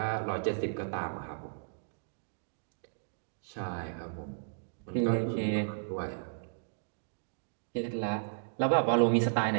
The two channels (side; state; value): left; silent; digital silence